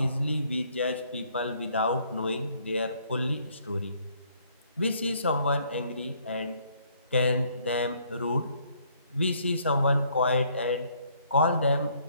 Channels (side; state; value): both; inverted; correlation -0.65